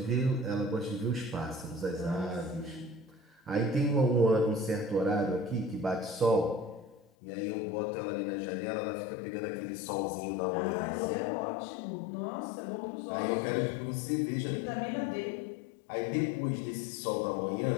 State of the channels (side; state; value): right; drops out; at 7.0 s